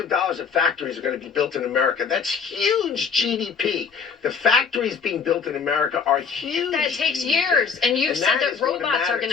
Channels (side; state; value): right; quieter; 5.9 dB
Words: dollars of factories are going to be built in America. That's huge GDP. The factories being built in America are huge. That takes years. And you've said that robots are going